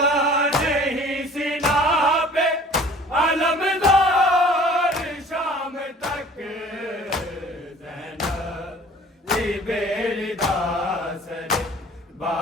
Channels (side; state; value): both; normal; correlation 0.49